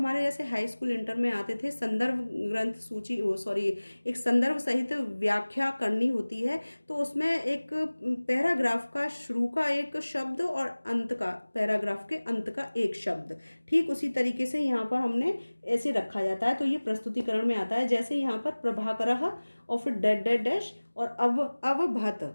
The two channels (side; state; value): both; inverted; correlation -1.00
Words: जैसे हाई स्कूल इंटर में आते थे, संदर्भ ग्रंथ सूची, एक संदर्भ सहित व्याख्या करनी होती है। तो उसमें एक पैराग्राफ का शुरू का एक शब्द और अंत का, पैराग्राफ के अंत का एक शब्द, ठीक उसी तरीके से यहाँ पर हमने ऐसे रखा जाता है। तो ये प्रस्तुतिकरण में आता है, जैसे यहाँ पर प्रभाकरः और फिर डैश डैश डैश और